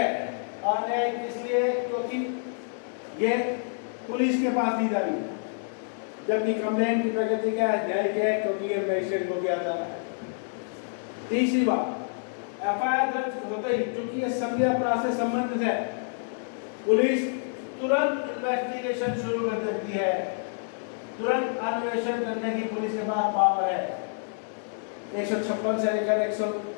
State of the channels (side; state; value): right; silent; digital silence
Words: अन्यायिक इसलिए क्योंकि ये पुलिस के पास दी जा रही है, जबकि कंप्लेंट की प्रकृति क्या है? न्यायिक है क्योंकि ये मजिस्ट्रेट को किया जा रहा है। तीसरी बात, एफआईआर दर्ज होते ही क्योंकि ये संज्ञेय अपराध से संबंधित है, पुलिस तुरंत इन्वेस्टिगेशन शुरू कर देती है। तुरंत अन्वेषण करने की पुलिस के पास पावर है। 156 से लेकर